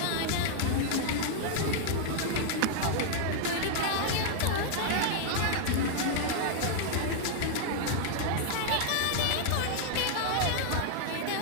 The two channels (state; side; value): different; both; correlation -0.01